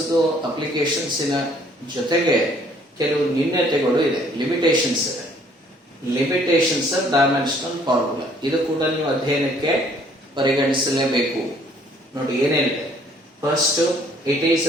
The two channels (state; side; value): normal; both; correlation 0.60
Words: ಅಪ್ಲಿಕೇಶನ್ಸಿನ ಜೊತೆಗೆ ಕೆಲವು ನ್ಯೂನ್ಯತೆಗಳು ಇದೆ, ಲಿಮಿಟೇಷನ್ಸ್ ಇದೆ. ಲಿಮಿಟೇಷನ್ಸ್ ಆಫ್ ಡೈಮೆನ್ಷನಲ್ ಫಾರ್ಮುಲಾ ಇದು ಕೂಡ ನೀವು ಅಧ್ಯಯನಕ್ಕೆ ಪರಿಗಣಿಸಲೇಬೇಕು. ನೋಡಿ ಏನೇನಿದೆ. First, it is